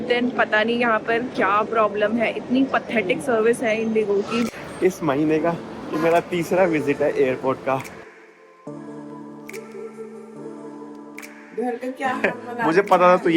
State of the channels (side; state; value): both; identical; correlation 1.00